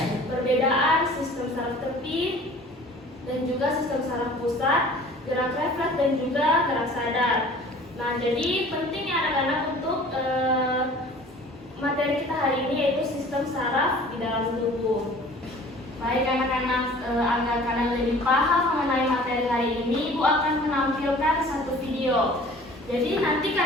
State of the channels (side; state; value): both; normal; correlation 0.47